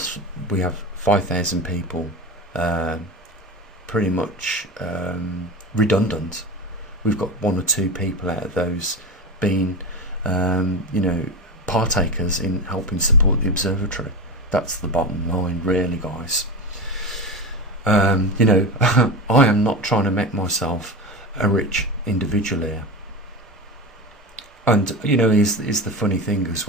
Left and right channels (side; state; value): both; normal; correlation 0.24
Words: we have 5,000 people pretty much redundant. We've got 1 or 2 people out of those being partakers in helping support the observatory. That's the bottom line, really, guys. I am not trying to make myself a rich individual here. And is the funny thing as